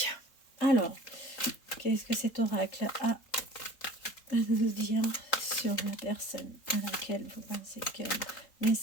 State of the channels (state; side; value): late; right; 3.9 ms